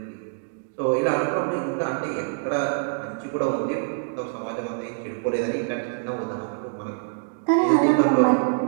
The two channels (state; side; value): silent; left; digital silence